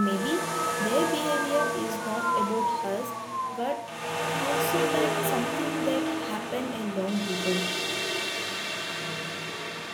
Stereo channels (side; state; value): both; identical; correlation 1.00